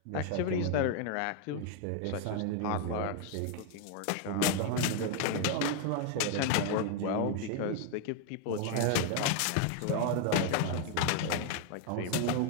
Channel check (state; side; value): different; both; correlation 0.01